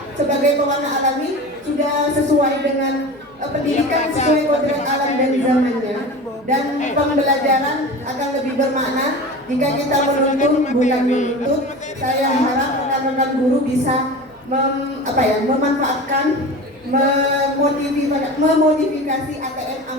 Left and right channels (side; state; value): both; normal; correlation 0.33